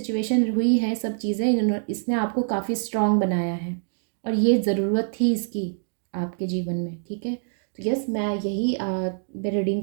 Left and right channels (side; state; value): left; silent; digital silence